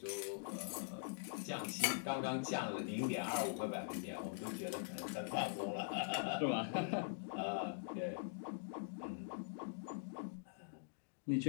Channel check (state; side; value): silent; right; digital silence